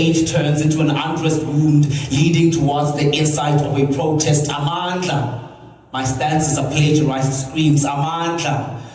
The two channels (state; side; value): identical; both; correlation 1.00